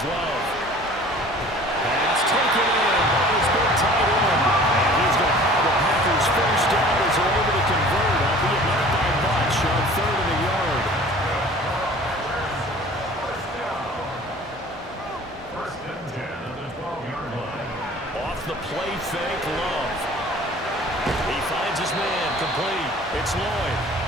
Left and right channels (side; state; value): both; normal; correlation 0.47